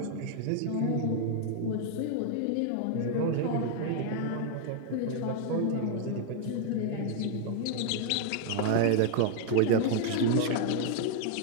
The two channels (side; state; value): both; different; correlation 0.00